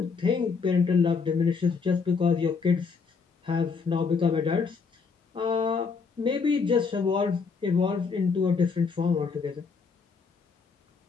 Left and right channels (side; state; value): right; quieter; 5.2 dB